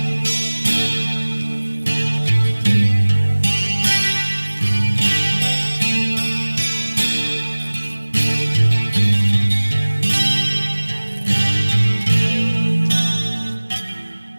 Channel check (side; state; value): both; inverted; correlation -1.00